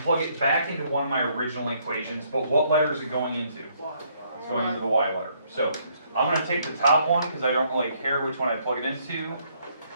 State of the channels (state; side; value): inverted; both; correlation -0.68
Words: plug it back into one of my original equations. But what letter is it going into? It's going into the Y letter. So I'm going to take the top one because I don't really care which one I plug it into.